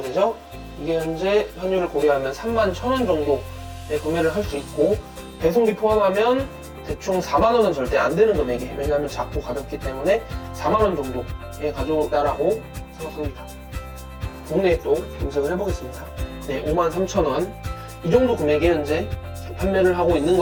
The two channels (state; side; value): identical; both; correlation 1.00